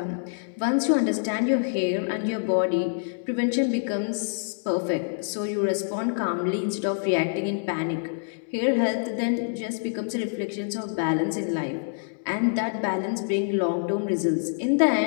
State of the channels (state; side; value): silent; right; 61 dB below the other